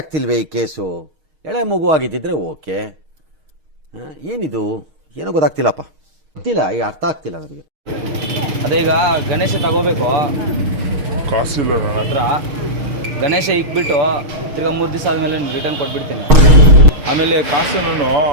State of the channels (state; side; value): late; left; 6.4 ms